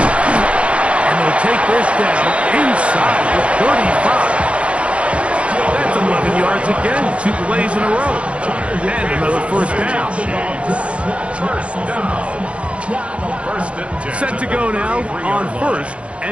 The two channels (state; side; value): late; left; 0.061 ms